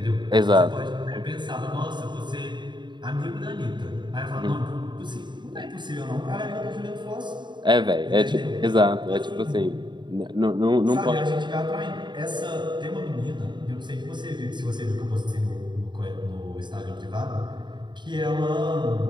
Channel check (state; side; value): late; left; 0.22 ms